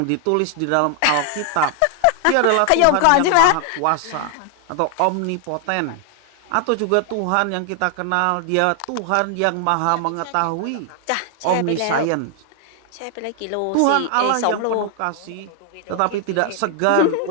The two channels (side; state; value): both; different; correlation 0.00